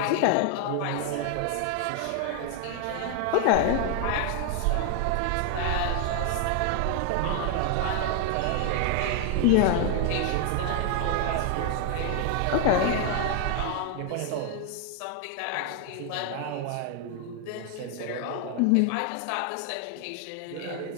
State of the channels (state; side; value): different; both; correlation 0.00